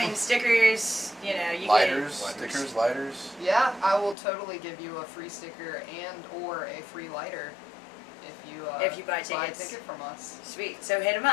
stickers, you know, you Lighters, get... stickers, lighters. Yeah, I will totally give you a free sticker and or a free lighter if you buy buy a tickets. ticket from us. Sweet. So hit them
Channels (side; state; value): right; drops out; at 4.2 s